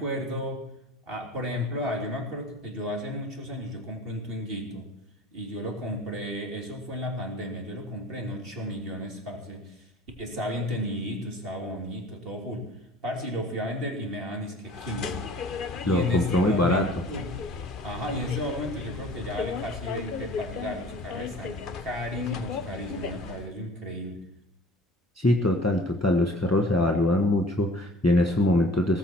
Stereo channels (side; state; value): both; normal; correlation 0.46